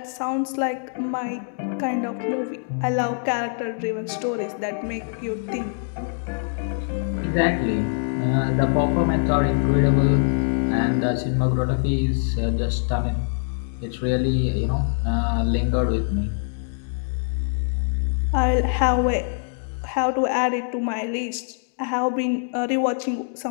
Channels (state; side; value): silent; right; digital silence